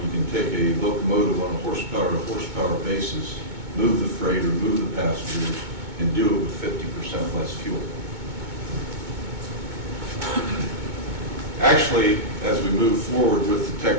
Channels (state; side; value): late; left; 2.2 ms